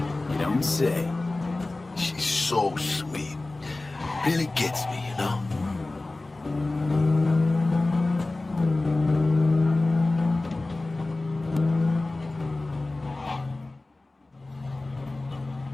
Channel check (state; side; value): quieter; right; 3.0 dB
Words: You don't say. She's so sweet. Really gets me, you know?